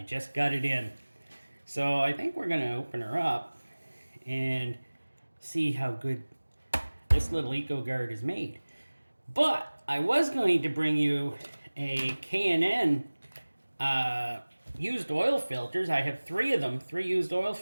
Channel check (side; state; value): both; inverted; correlation -1.00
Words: just got it in. So I think we're going to open her up and see how good this little ECOGARD is made. But I was going to bring you a K&N used oil filters. I have 3 of them, 3 used oil